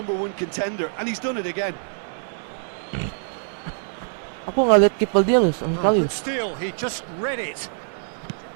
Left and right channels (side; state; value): left; silent; digital silence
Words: contender, and he's done it again. Aku nggak lihat kiper dia loh sama sekali. But still, he just read it.